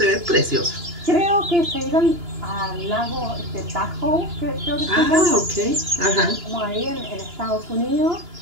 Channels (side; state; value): left; late; 2.9 ms